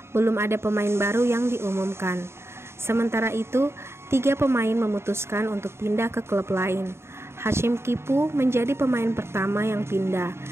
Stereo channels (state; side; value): late; left; 0.12 ms